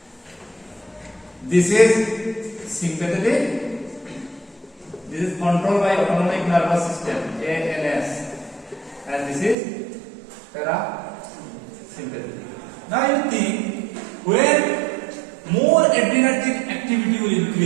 This is sympathetic. This is controlled by autonomic nervous system, ANS, and this is parasympathetic. Now you think, when more adrenergic activity will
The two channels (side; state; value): left; drops out; at 9.6 s